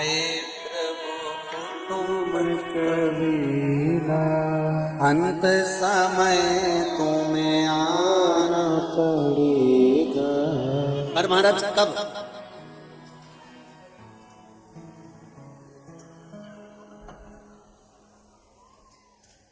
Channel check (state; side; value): identical; both; correlation 1.00